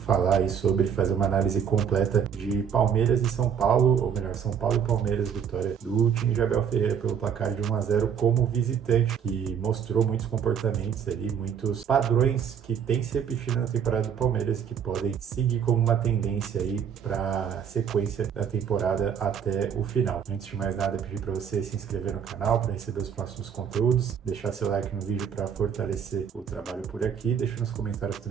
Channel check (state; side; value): quieter; left; 7.8 dB